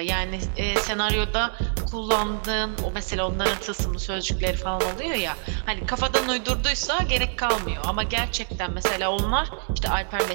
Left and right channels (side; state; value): left; silent; 60 dB below the other